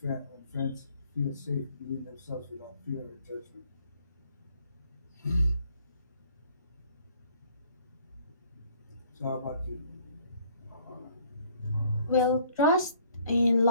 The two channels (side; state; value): both; inverted; correlation -0.60